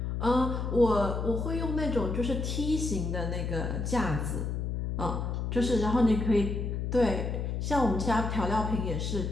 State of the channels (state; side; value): noise; left; hum, 2 dB below the sound